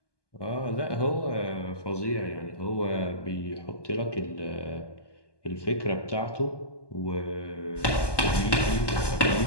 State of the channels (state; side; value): late; right; 1.2 ms